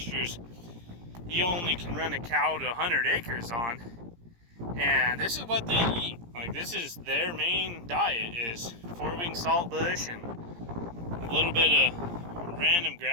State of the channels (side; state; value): left; late; 17 ms